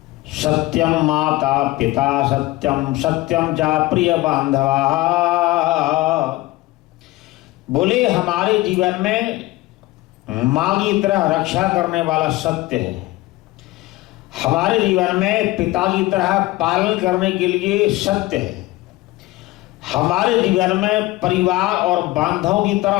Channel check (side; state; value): right; quieter; 19.1 dB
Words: सत्यम माता पिता सत्यम, सत्यम चा प्रिय बांधवा। बोले हमारे जीवन में मां की तरह रक्षा करने वाला सत्य है, हमारे जीवन में पिता की तरह पालन करने के लिए सत्य है, हमारे जीवन में परिवार और बांधवों की